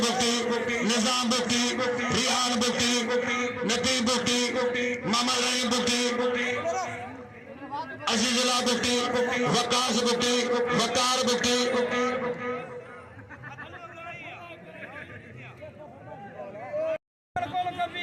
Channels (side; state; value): both; identical; correlation 1.00